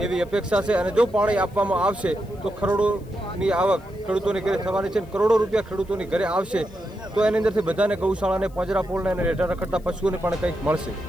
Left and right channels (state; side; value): noise; left; hiss, 29 dB below the sound